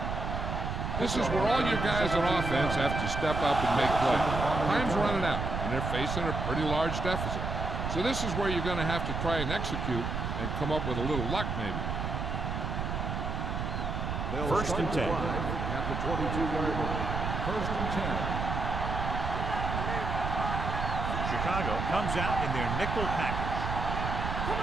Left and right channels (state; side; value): noise; right; rumble, 2 dB below the sound